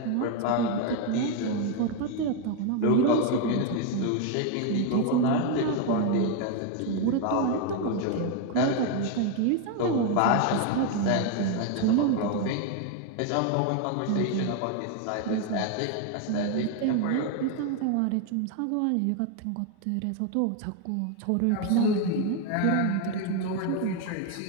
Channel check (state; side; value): different; both; correlation 0.01